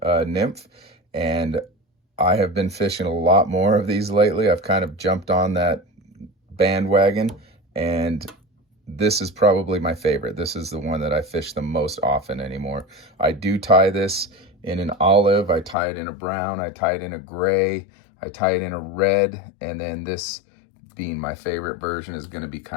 nymph, and I have been fishing a lot more of these lately. I've kind of jumped on that bandwagon, and this is probably my favorite. This is the one that I fish the most often anymore. I do tie this in an olive, I tie it in a brown, I tie it in a gray, I tie it in a red, and then this being my favorite version is going to be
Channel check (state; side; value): drops out; right; at 15.8 s